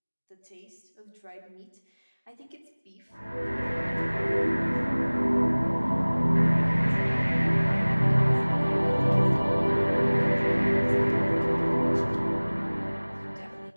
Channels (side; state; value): both; inverted; correlation -1.00